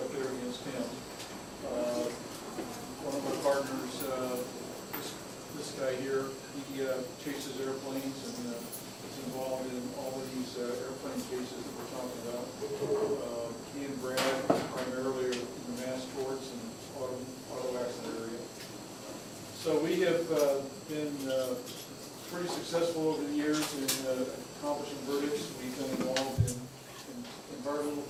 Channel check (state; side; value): identical; both; correlation 1.00